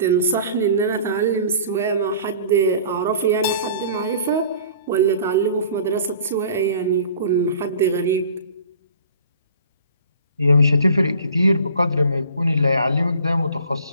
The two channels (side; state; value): both; inverted; correlation -0.47